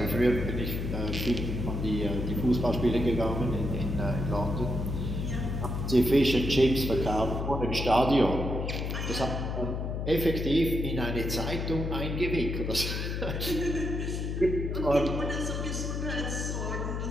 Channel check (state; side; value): noise; left; hum, 2 dB below the sound